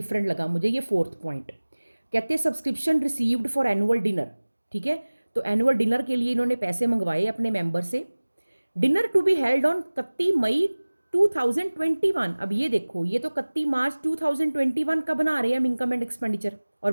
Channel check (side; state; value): both; inverted; correlation -1.00